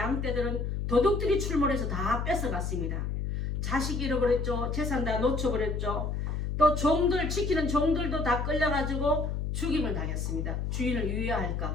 도둑들이 출몰해서 다 뺏어갔습니다. 자식 잃어버렸죠. 재산 다 놓쳐버렸죠. 또 종들, 지키는 종들도 다 끌려가지고 죽임을 당했습니다. 주인을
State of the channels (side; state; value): left; noise; hum, 2 dB below the sound